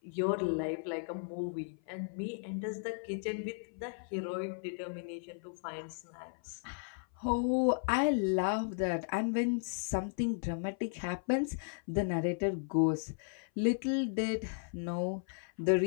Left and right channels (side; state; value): right; silent; 54 dB below the other